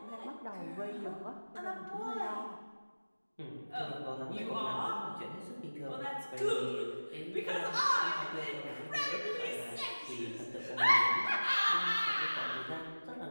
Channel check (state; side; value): inverted; both; correlation -1.00